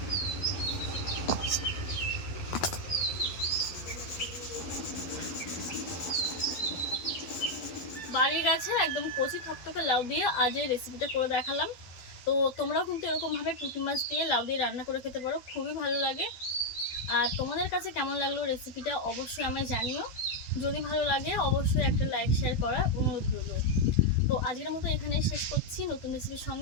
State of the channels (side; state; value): right; late; 12 ms